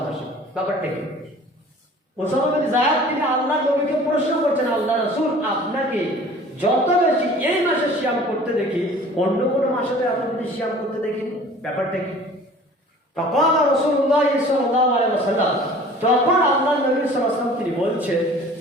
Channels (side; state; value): both; normal; correlation 0.47